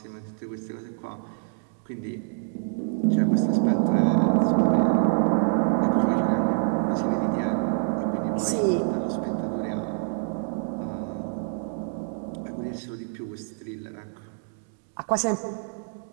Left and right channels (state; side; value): silent; left; digital silence